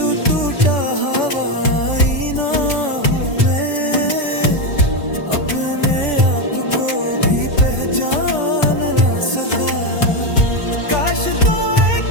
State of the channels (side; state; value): right; late; 3.4 ms